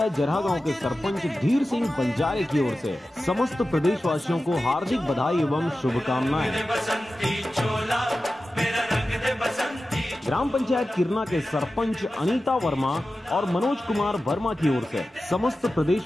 जरहा गांव के सरपंच धीर सिंह बंजारे की ओर से समस्त प्रदेशवासियों को हार्दिक बधाई एवं शुभकामनाएं। ग्राम पंचायत किरना के सरपंच अनीता वर्मा और मनोज कुमार वर्मा की ओर से समस्त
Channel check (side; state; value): both; normal; correlation 0.94